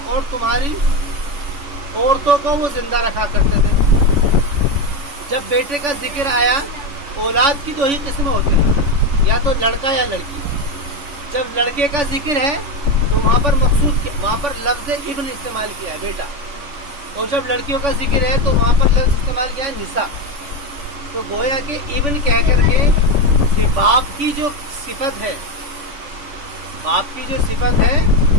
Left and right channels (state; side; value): late; left; 3.5 ms